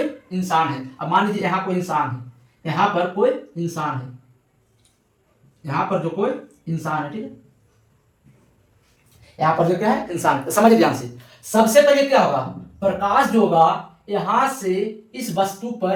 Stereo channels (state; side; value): identical; both; correlation 1.00